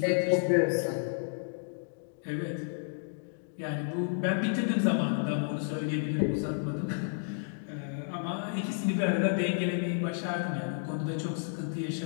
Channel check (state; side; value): silent; right; digital silence